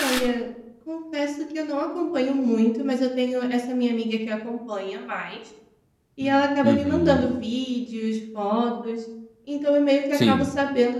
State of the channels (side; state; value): both; identical; correlation 1.00